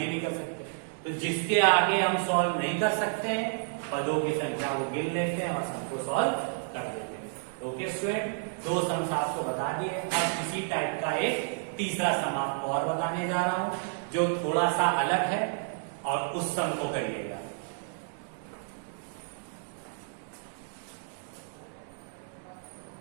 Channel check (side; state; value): left; silent; digital silence